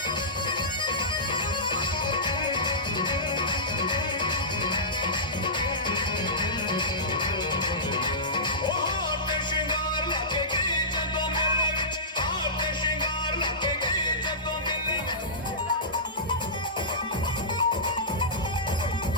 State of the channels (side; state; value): both; normal; correlation -0.18